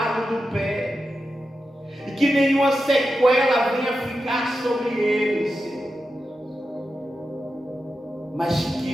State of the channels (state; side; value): normal; both; correlation 0.90